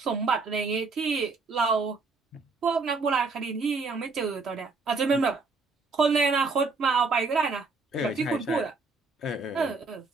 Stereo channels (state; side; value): quieter; left; 4.1 dB